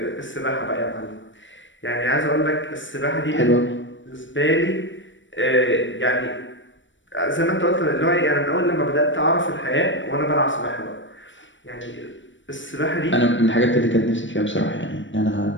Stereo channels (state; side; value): late; right; 0.55 ms